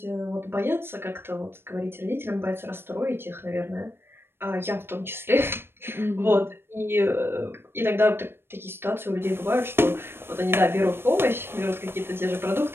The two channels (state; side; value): late; left; 0.11 ms